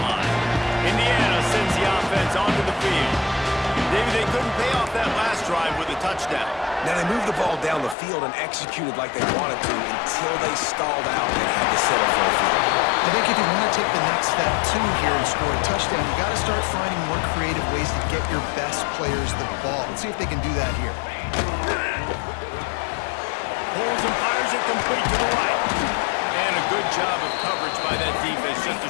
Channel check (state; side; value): drops out; right; at 8.0 s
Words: line. Indiana sends the offense onto the field. David, they couldn't pay off that last drive with a touchdown. Now they moved the ball down the field and executed like they wanted to until they stalled out and had to settle for a field. I think if you want to take the next step too here and score a touchdown, you got to start finding more creative ways to get your best players the ball. Let's see if they can do that here. Pulls and fires it complete to the right. And a good job of coverage by that defense, just